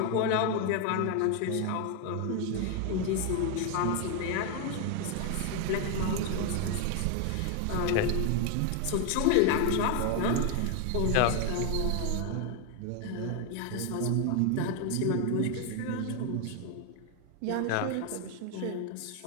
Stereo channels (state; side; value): different; both; correlation 0.01